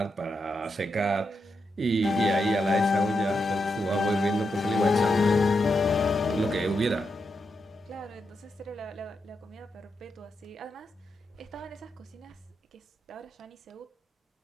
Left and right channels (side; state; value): both; normal; correlation 0.85